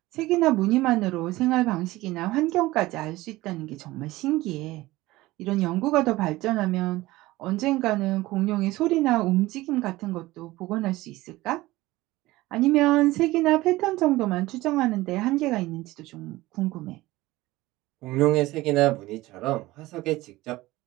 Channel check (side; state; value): left; quieter; 18.6 dB